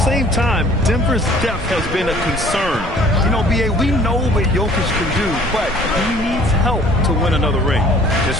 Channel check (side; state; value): both; normal; correlation 0.53